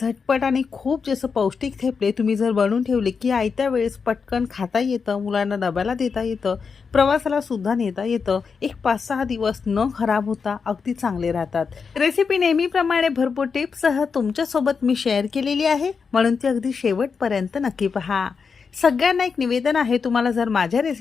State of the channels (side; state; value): right; quieter; 5.6 dB